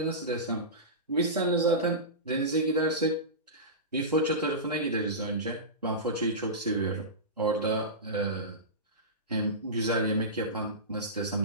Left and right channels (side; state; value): both; normal; correlation -0.19